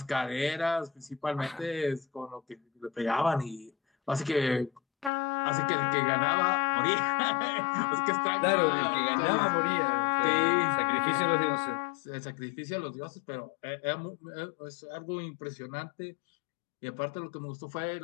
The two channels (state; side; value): drops out; right; at 5.1 s